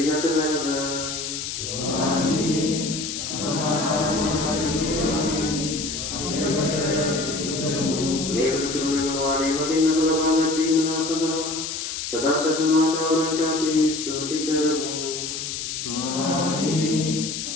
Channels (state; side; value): noise; left; hiss, 5 dB below the sound